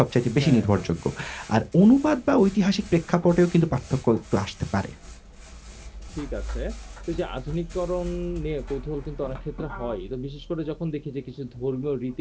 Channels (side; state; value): both; identical; correlation 1.00